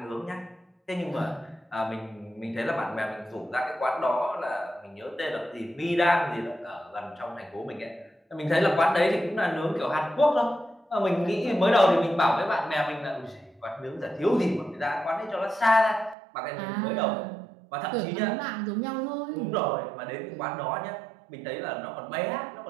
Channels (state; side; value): drops out; left; at 16.2 s